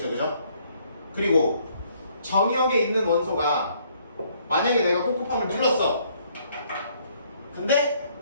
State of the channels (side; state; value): both; inverted; correlation -0.66